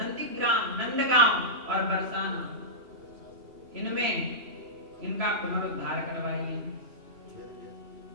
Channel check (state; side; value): late; left; 3.0 ms